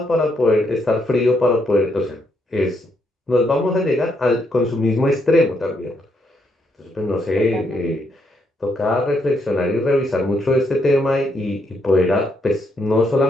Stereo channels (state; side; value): normal; both; correlation 0.76